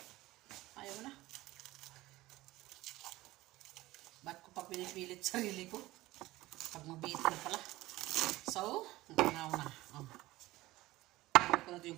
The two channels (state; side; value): quieter; left; 18.1 dB